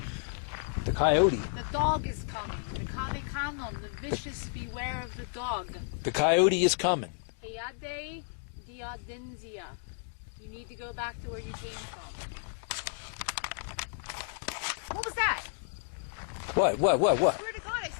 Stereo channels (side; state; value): right; silent; digital silence